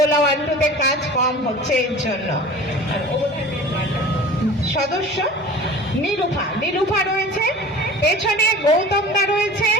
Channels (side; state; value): both; normal; correlation 0.40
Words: 1-2-তে কাজ কম হচ্ছে এর জন্য। সদস্য নীলুফা রয়েছে, পেছনে গৌতমদা রয়েছে,